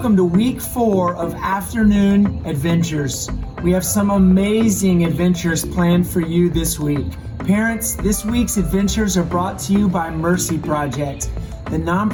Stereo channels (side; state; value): both; identical; correlation 1.00